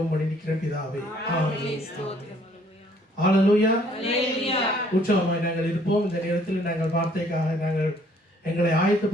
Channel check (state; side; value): normal; both; correlation 0.61